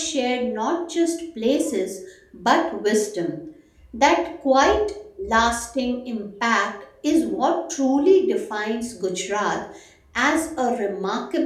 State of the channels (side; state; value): both; identical; correlation 1.00